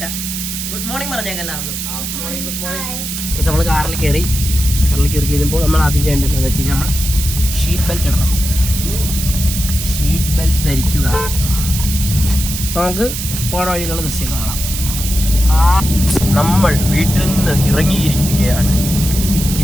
ഗുഡ് മോർണിംഗ് പറഞ്ഞേക്കാം എല്ലാവർക്കും. നമ്മൾ കാറിൽ കയറി കഴിഞ്ഞപ്പോൾ നമ്മൾ ആദ്യം ചെയ്യേണ്ടത് എന്താണെന്ന് വെച്ച് കഴിഞ്ഞാൽ നമ്മൾ ഷീറ്റ് ബെൽറ്റ് ഇടണം. ഷീറ്റ് ബെൽറ്റ് ധരിക്കുക. നമുക്ക് പോണ വഴിയിലുള്ള ദൃശ്യം കാണാം. നമ്മൾ വീട്ടിൽ നിന്ന് ഇറങ്ങിയിരിക്കുകയാണ്.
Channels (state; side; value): noise; right; hiss, 5 dB below the sound